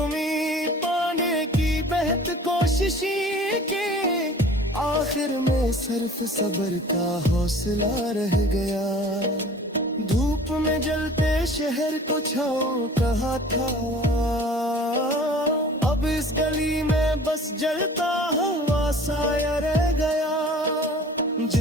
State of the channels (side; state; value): both; normal; correlation 0.46